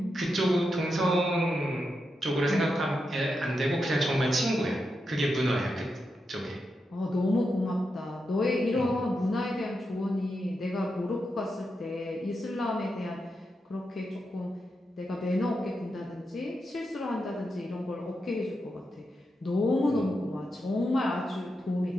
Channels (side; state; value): both; normal; correlation 0.86